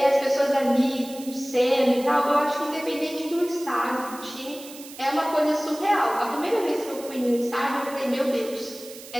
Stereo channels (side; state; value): right; noise; hiss, 16 dB below the sound